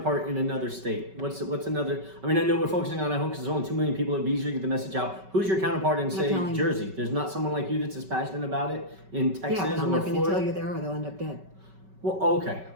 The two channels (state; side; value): late; left; 5.3 ms